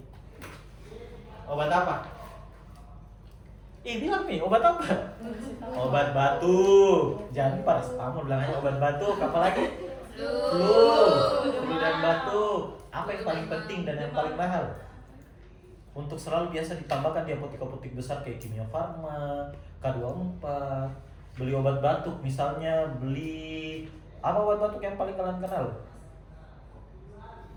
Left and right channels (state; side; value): identical; both; correlation 1.00